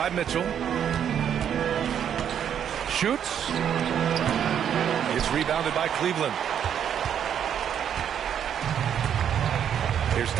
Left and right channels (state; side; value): quieter; left; 9.0 dB